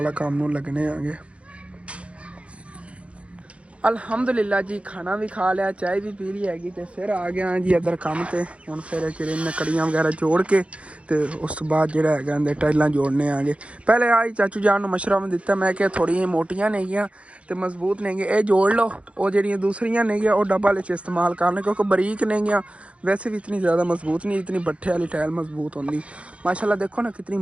ਕੰਮ ਨੂੰ ਲੱਗਣੇ ਆਂਗੇ। ਅਲਹਮਦੁਲਿਲਾ ਜੀ ਖਾਣਾ ਵੀ ਖਾ ਲਿਆ, ਚਾਹ ਵੀ ਪੀ ਲਈ ਹੈਗੀ ਤੇ ਫਿਰ ਆ ਗਿਆ ਜੀ ਇੱਧਰ ਕੰਮ ਤੇ। ਹੁਣ ਫਿਰ ਕਿਰਨ ਕੜੀਆਂ ਵਗੈਰਾ ਜੋੜ ਕੇ ਤੇ ਉਸ ਤੋਂ ਬਾਅਦ ਜਿਹੜਾ ਹੈਗਾ ਅੰਦਰ ਟਾਈਲਾਂ ਜੋੜਨੇ ਆਂਗੇ। ਪਹਿਲੇ ਆਈ ਚਾਚੂ ਜਾਨ ਨੂੰ ਮਸ਼ਵਰਾ ਦਿੱਤਾ, ਮੈਂ ਕਿਹਾ ਥੋੜ੍ਹੀਆਂ ਮੋਟੀਆਂ ਨੇਗੀਆਂ ਤੇ ਮਜ਼ਬੂਤ ਨੇਗੀਆਂ, ਇਹ ਜੋੜ ਲਓ। ਉਹ ਜਿਹੜੀਆਂ ਦੂਸਰੀਆਂ ਨੇਗੀਆਂ ਉਹ ਡੱਬਾ ਵਿੱਚ ਇਸਤੇਮਾਲ ਕਰਨੇ ਕਿਉਂਕਿ ਬਰੀਕ ਨੇਗੀਆਂ, ਵੈਸੇ ਵੀ ਇਤਨੀ ਜ਼ਿਆਦਾ ਮਜ਼ਬੂਤ ਨਹੀਂ, ਇਤਨੀ ਬੱਠੇ ਵਾਲੀ ਟਾਇਲ ਮਜ਼ਬੂਤ ਹੁੰਦੀ। ਮਾਸ਼ਾਅੱਲਾ ਦੇਖੋ ਨਾ ਕਿਤਨੀ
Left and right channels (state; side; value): late; left; 0.062 ms